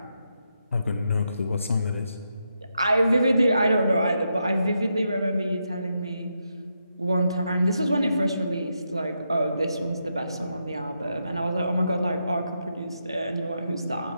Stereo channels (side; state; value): both; inverted; correlation -0.83